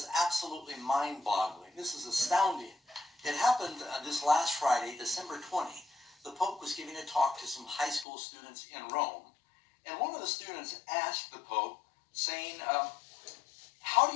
absolutely mind-boggling. This is astounding. It happened this last Friday, December 20. The Pope was giving a talk to some high school students in Rome, and one of the students asked the Pope, saying, how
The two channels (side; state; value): right; drops out; at 8.1 s